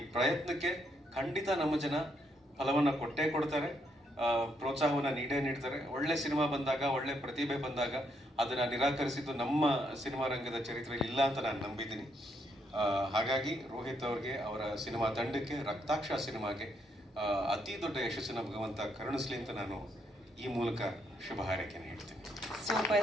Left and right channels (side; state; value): both; normal; correlation 0.75